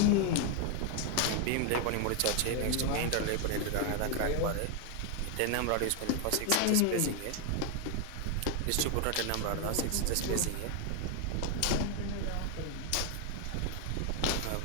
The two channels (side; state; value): both; different; correlation 0.01